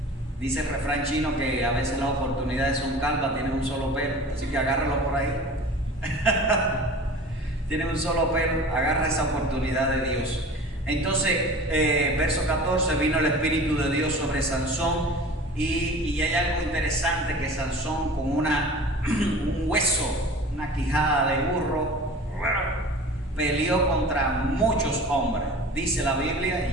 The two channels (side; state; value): both; normal; correlation 0.40